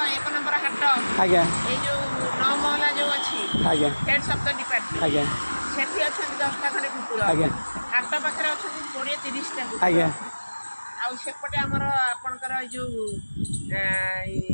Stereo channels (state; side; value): inverted; both; correlation -1.00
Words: 1 ନମ୍ବର ହାଟ ଆଜ୍ଞା ଏଇ ଯୋଉ 9 ମହଲା ଯୋଉ ଅଛି ଆଜ୍ଞା ହେଡ୍ ସପ୍ତ ଡିପାର୍ଟମେଣ୍ଟ ଆଜ୍ଞା ସେଠି ଅଛନ୍ତି 10ଟା ଖଣ୍ଡେ କୁକୁର ଆଜ୍ଞା ହାଟ ପାଖରେ ଅଛନ୍ତି 20-30ଟା କୁକୁର ଆଜ୍ଞା ଆଉ ସେପଟେ ଆମର ଆପଣଙ୍କର ଏଇ ଯୋଉ